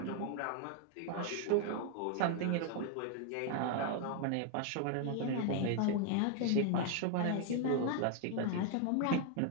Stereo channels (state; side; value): different; both; correlation 0.00